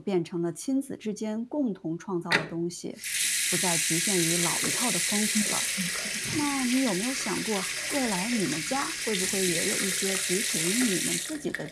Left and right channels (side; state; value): both; identical; correlation 1.00